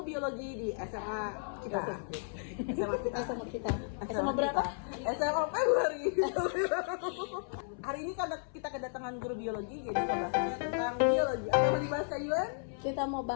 biologi di SMA kita. Sama kita. Sama berapa? SMA Februari. Hari ini karena kita kedatangan guru biologi, jadi kita bahasnya tentang biologi. Apa yang mau dibahas Kak Yun? Kita mau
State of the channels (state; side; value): silent; right; 55 dB below the other